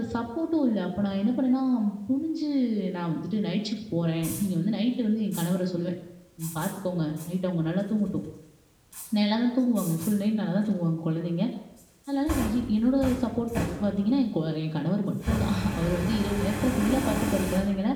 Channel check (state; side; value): identical; both; correlation 1.00